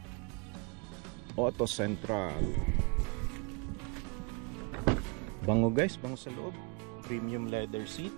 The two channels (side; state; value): left; quieter; 32.5 dB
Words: Auto central. Bango guys, bango sa loob. Premium leather